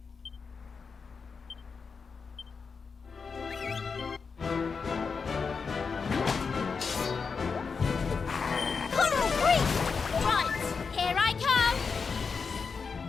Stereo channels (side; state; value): right; quieter; 5.3 dB